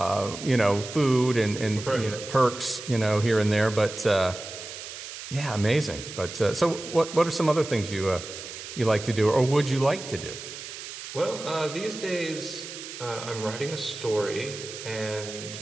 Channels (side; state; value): right; noise; hiss, 11 dB below the sound